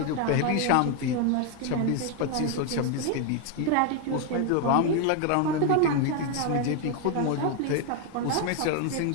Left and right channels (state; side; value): different; both; correlation 0.01